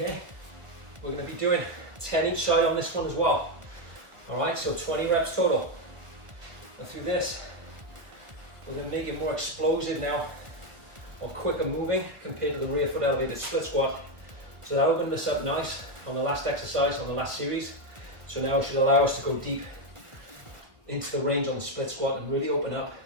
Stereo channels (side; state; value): left; late; 1.5 ms